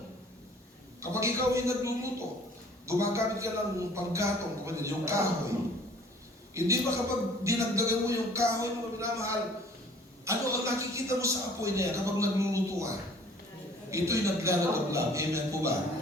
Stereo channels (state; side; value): normal; both; correlation 0.53